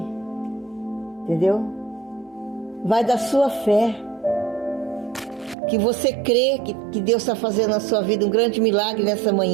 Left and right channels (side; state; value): left; drops out; at 5.6 s